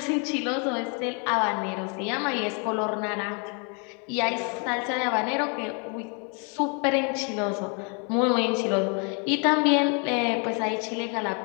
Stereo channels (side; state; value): right; quieter; 36.5 dB